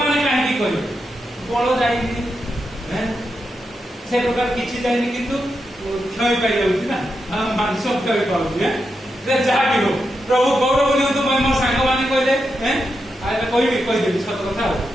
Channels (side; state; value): both; normal; correlation 0.86